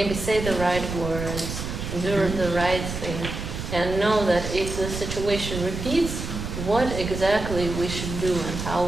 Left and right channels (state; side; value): noise; right; rumble, 6 dB below the sound